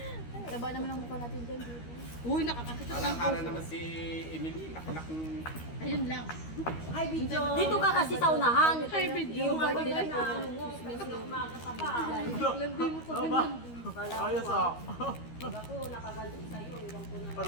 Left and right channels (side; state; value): right; late; 13 ms